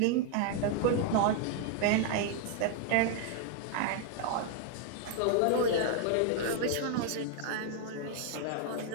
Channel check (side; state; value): both; different; correlation 0.00